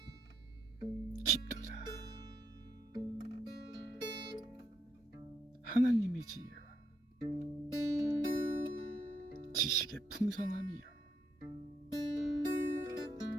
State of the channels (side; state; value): both; normal; correlation 0.76